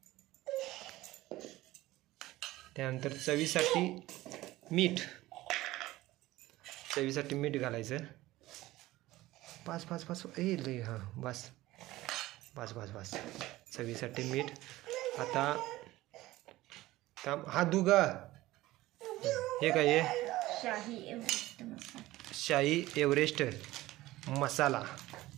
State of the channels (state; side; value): quieter; left; 17.4 dB